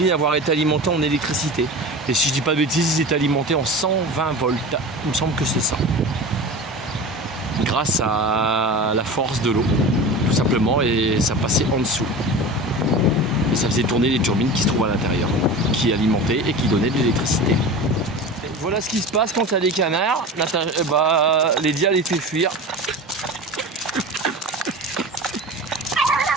avoir été alimenté en électricité. Et si je dis pas de bêtises, ils étaient alimentés en 120 volts. Il me semble que c'est ça. Grâce à la force de l'eau, tout simplement, et ça passait en dessous. Et ça faisait tourner les turbines qui se trouvent à l'intérieur, qui alimentaient et qui donnaient de l'électricité. Voilà ce qui se passe quand il y a des canards. Lydia les fait fuir.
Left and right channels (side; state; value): both; normal; correlation 0.32